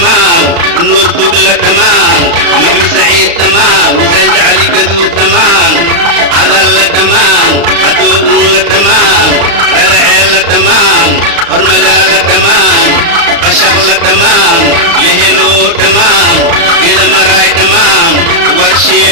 نور دقلة تمام محمد سعيد تمام مجاز علي قدو تمام عدل تمام عدول تمام رلعيل تمام هرمجال تمام بشغل تمام لهلو تمام كده مراي تمام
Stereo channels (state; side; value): late; left; 35 ms